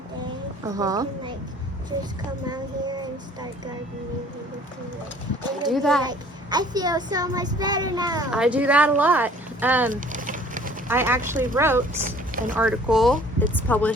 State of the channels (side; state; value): both; normal; correlation 0.53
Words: day, Uh-huh. we can like just come out here and start gardening. And Do that. Like, I feel so much better now. I do that a lot. I actually wrote an article, it's